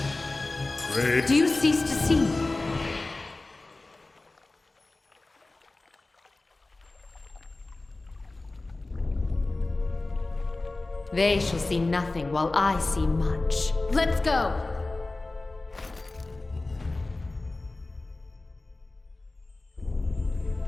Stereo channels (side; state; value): right; quieter; 3.1 dB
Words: Do you cease to see me? They shall see nothing while I see much. Let's go!